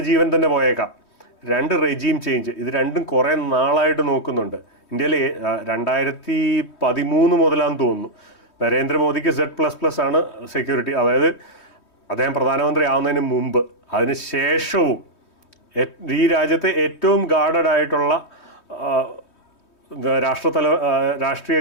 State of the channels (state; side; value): late; right; 3.2 ms